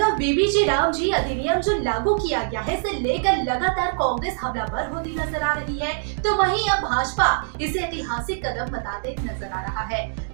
बीबीजी रामजी अधिनियम जो लागू किया गया है, इसे लेकर लगातार कांग्रेस हमलावर होती नजर आ रही है, तो वहीं अब भाजपा इसे ऐतिहासिक कदम बताते नजर आ रहा है।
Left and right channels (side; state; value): left; silent; digital silence